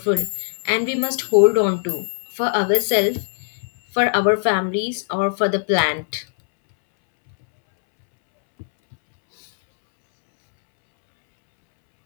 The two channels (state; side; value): silent; right; 66 dB below the other